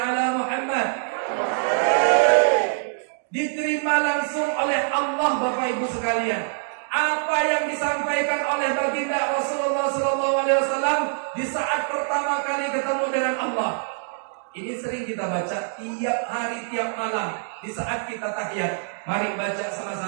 Muhammad. Diterima langsung oleh Allah Bapak Ibu sekalian. Apa yang disampaikan oleh baginda Rasulullah SAW di saat pertama kali ketemu dengan Allah. Ini sering kita baca tiap hari, tiap malam di saat kita tahiyat. Mari baca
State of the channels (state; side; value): silent; left; digital silence